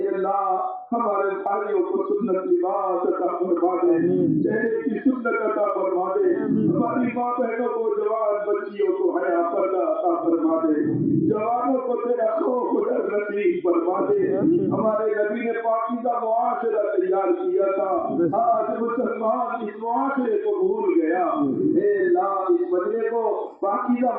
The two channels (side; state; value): both; identical; correlation 1.00